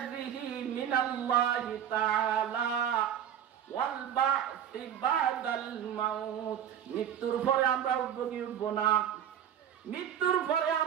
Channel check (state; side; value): quieter; left; 9.6 dB